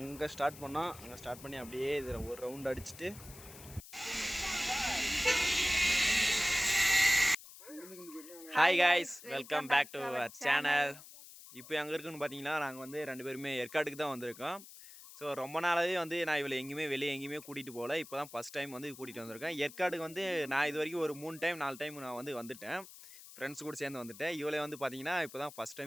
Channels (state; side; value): noise; left; hiss, 17 dB below the sound